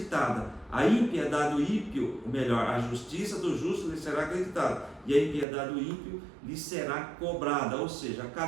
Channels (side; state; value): left; drops out; at 5.5 s